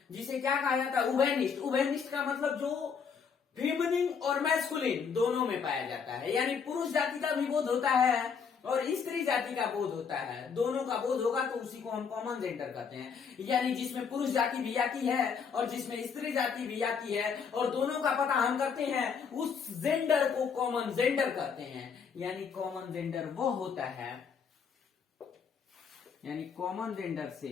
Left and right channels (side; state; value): right; quieter; 6.3 dB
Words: जिसे क्या कहा जाता है? उभयनिष्ठ। उभयनिष्ठ का मतलब जो फेमिनिन और मैस्कुलिन दोनों में पाया जाता है, यानी पुरुष जाति का भी बोध होता है और स्त्री जाति का बोध होता है, दोनों का बोध होगा तो उसी को हम कॉमन जेंडर कहते हैं। यानी जिसमें पुरुष जाति भी आती है और जिसमें स्त्री जाति भी आती है और दोनों का पता हम करते हैं, उस जेंडर को कॉमन जेंडर कहते हैं। यानी कॉमन जेंडर वो होता है, यानी कॉमन जेंडर से